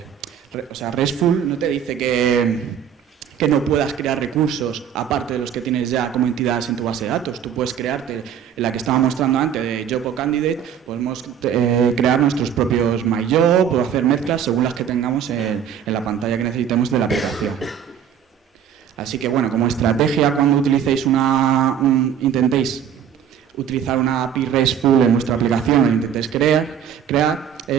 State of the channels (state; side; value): quieter; left; 8.7 dB